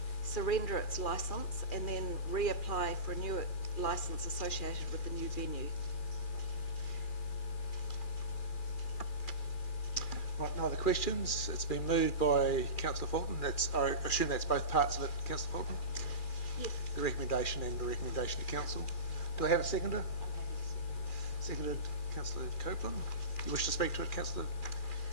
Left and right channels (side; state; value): right; late; 2.4 ms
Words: surrender its licence and then reapply for a new licence associated with the new venue. Right, no other questions? It's been moved by Councillor Fulton. I assume that's both parts of it, Councillor Fulton? Yes. The recommendation and the recommendation to council. Do I have a seconder? Seconded, Councillor Copeland. You wish to speak to it, Councillor?